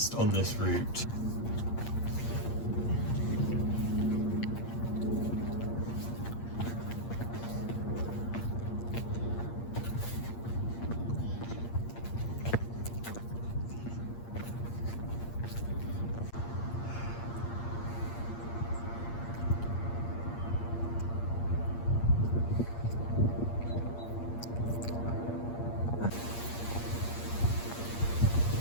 on this route.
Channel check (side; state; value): right; late; 8.6 ms